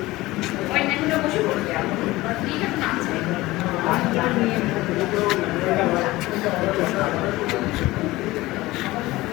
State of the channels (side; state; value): right; quieter; 18.9 dB